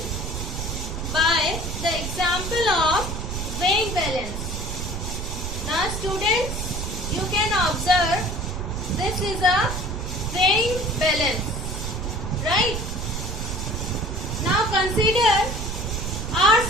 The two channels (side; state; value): right; noise; rumble, 5 dB below the sound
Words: by the example of weighing balance. Now students, you can observe this is a weighing balance, right? Now consider our